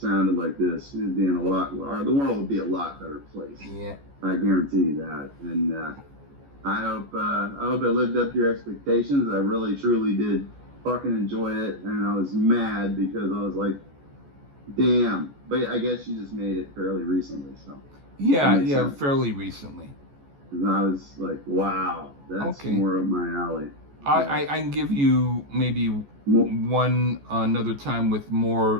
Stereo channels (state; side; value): late; left; 14 ms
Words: like this, it'd be the world would be a lot better place. Yeah. I guarantee you that. And I hope it lived up to your expectations. I really truly did fucking enjoy it, and I was mad because I was like, damn. But I guess you just made it fairly recently, so. Yeah, fairly recently. And I was like, wow, that's more up my alley. I can give you maybe one another time with more